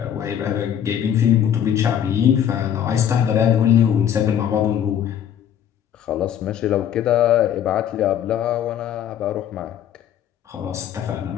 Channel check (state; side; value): quieter; right; 9.6 dB